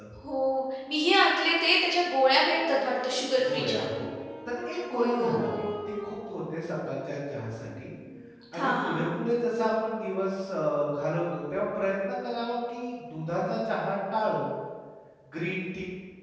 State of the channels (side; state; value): both; identical; correlation 1.00